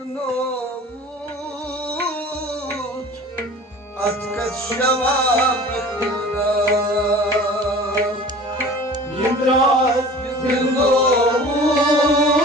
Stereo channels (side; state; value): both; normal; correlation 0.42